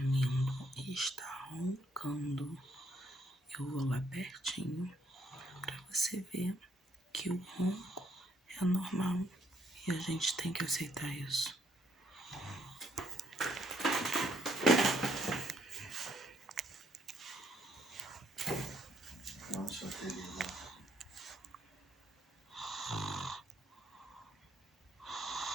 e está roncando. Eu vou lá pertinho para você ver que o ronco é normal e a gente tem que aceitar isso. Nossa, querida.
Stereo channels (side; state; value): both; normal; correlation 0.70